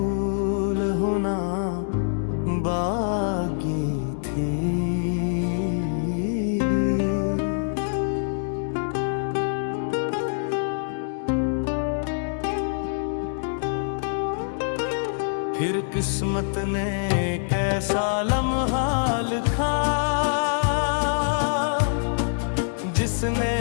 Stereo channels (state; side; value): silent; right; digital silence